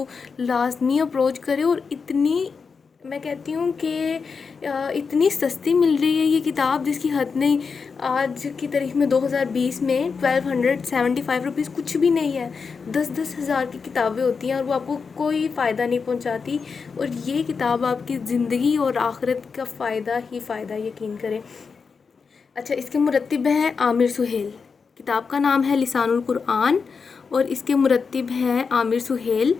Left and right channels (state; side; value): quieter; right; 5.3 dB